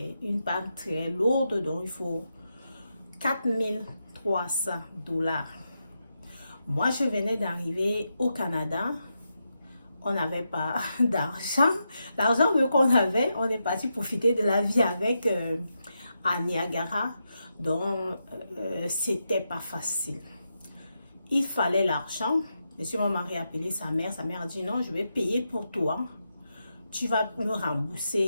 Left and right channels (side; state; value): both; inverted; correlation -0.85